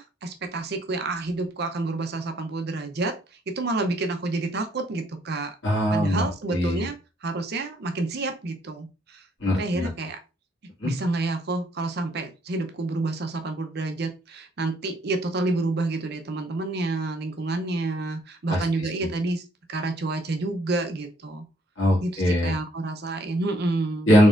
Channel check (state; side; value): normal; both; correlation 0.68